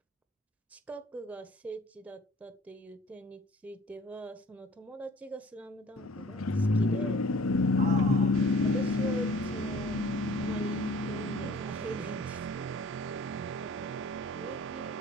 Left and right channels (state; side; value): normal; both; correlation 0.50